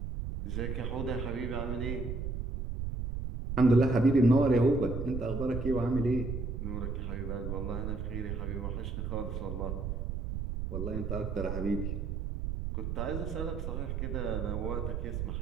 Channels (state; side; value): noise; right; rumble, 3 dB below the sound